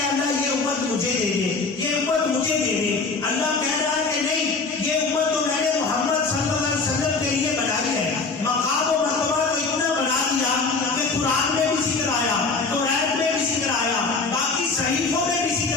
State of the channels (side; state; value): right; quieter; 4.2 dB